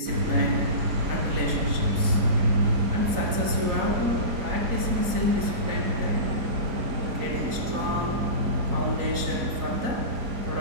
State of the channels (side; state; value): left; late; 4.0 ms